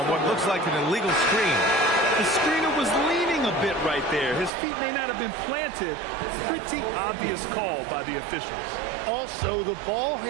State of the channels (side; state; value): left; drops out; at 4.5 s